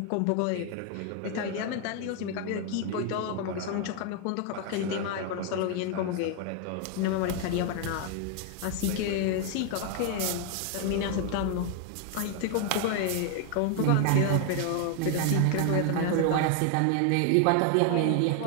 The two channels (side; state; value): both; different; correlation 0.00